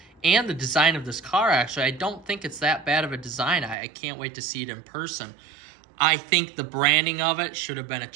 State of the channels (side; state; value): left; drops out; at 3.8 s